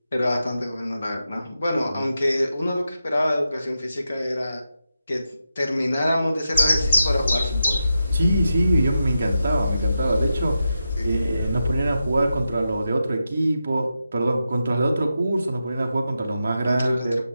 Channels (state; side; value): inverted; both; correlation -0.88